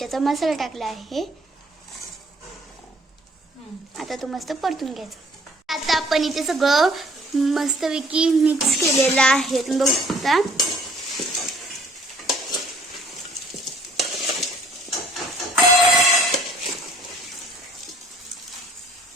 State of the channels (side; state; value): both; normal; correlation 0.57